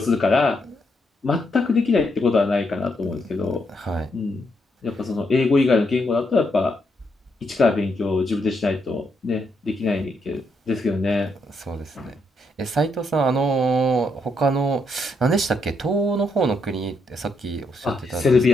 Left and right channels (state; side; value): normal; both; correlation 0.78